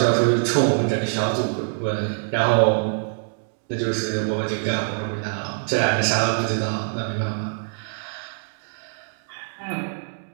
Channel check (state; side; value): silent; left; digital silence